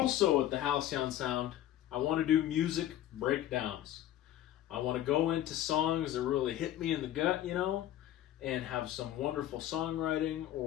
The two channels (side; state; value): right; quieter; 12.6 dB